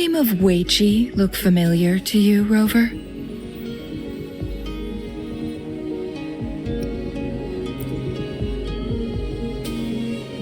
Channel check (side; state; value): both; identical; correlation 1.00